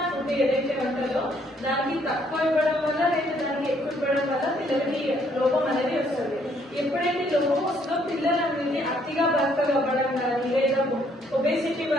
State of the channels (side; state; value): both; normal; correlation 0.67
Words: ఫుడ్ ఏదైతే ఉంటుందో దానికి తక్కువ ఇవ్వడం వల్ల లేదా దానికి ఎక్కువ ఇవ్వడం వల్ల పిల్లలకి లోపం అనేది వస్తుంది. ఎప్పుడైతే లోపం వస్తుందో పిల్లలు అనేది అతిగా బక్కగా అవ్వడం కానీ లేదా ఒబేసిటీ